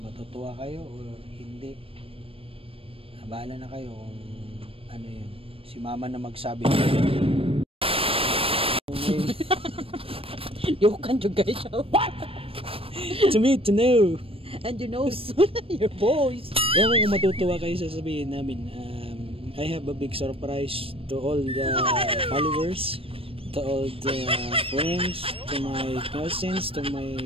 matutuwa kayo or hindi. Bahala na kayo kung ano yun. Si mama na magsabi. You can't guys. What? To me, to know. And you know soon your voice. Ewan kung matutuwa kayo sasabihin namin. I have a big surprise to all the followers, to all the friends, to my cousins, to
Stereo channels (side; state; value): left; late; 0.27 ms